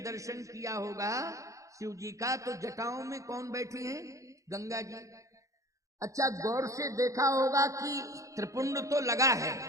दर्शन किया होगा शिव जी का, तो जटाओं में कौन बैठी है? गंगा जी। अच्छा, गौर से देखा होगा कि त्रिपुंड तो लगा है,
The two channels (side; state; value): left; late; 0.15 ms